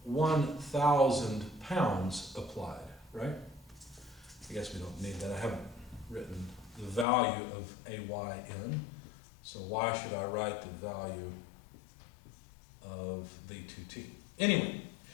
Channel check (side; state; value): right; drops out; at 7.1 s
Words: 1,000 pounds applied, right? I guess we don't need that. I haven't written the value of AY in, so why should I write the value of the 2T? Anyway,